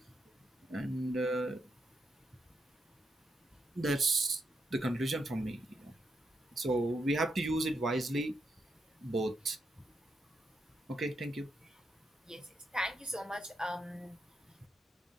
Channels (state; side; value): normal; both; correlation 0.82